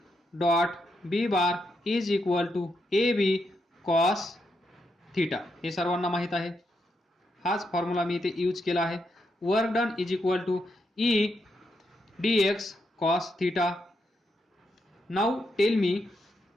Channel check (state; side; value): normal; both; correlation 0.81